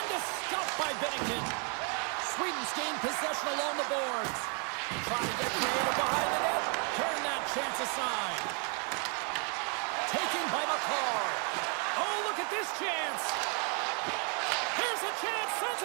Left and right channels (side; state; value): left; quieter; 38.9 dB